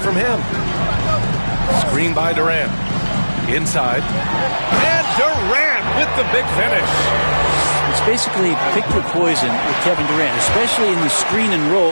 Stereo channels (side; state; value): both; inverted; correlation -1.00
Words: him. Screen by Durant. Inside. And Durant with the big finish. It's basically pick your poison with Kevin Durant, especially in the screen and roll,